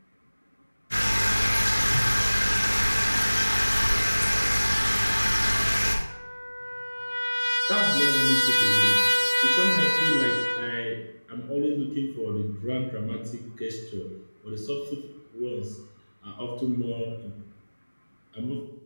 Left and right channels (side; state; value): both; inverted; correlation -1.00